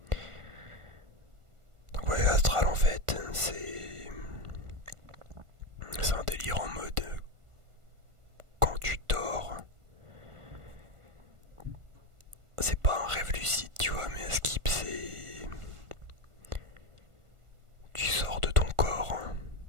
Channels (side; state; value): left; late; 1.4 ms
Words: Donc voyage astral en fait, c'est un délire en mode quand tu dors, c'est pas un rêve lucide, tu vois, mais un skip, c'est tu sors de ton corps